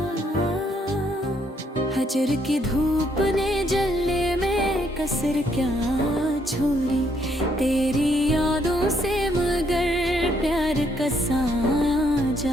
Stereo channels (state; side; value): normal; both; correlation 0.71